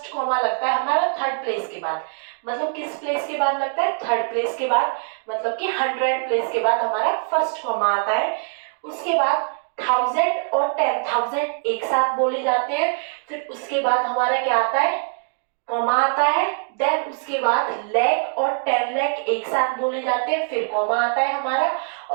कॉमा लगता है हमारा थर्ड प्लेस के बाद। मतलब किस प्लेस के बाद लगता है? थर्ड प्लेस के बाद। मतलब कि 100 प्लेस के बाद हमारा फर्स्ट कॉमा आता है। उसके बाद 1000 और 10,000 एक साथ बोले जाते हैं। फिर उसके बाद हमारा क्या आता है? कॉमा आता है। देन उसके बाद लाख और 10 लाख एक साथ बोले जाते हैं। फिर कॉमा आता है हमारा।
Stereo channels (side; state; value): left; silent; 64 dB below the other